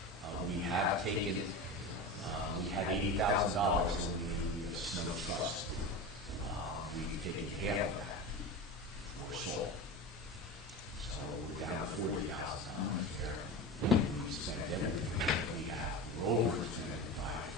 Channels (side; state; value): both; normal; correlation 0.26